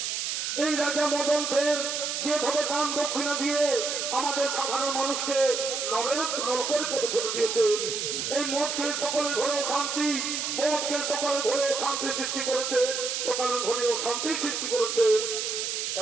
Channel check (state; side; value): noise; right; hiss, 2 dB below the sound